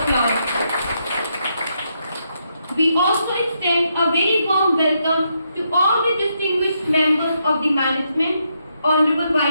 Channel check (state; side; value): inverted; both; correlation -0.79